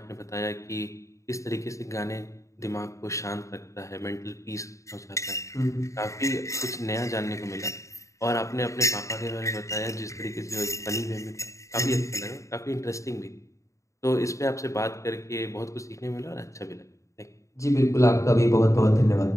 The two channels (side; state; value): right; late; 0.15 ms